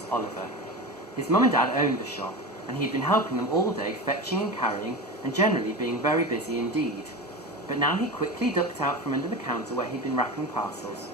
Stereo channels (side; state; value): both; normal; correlation 0.26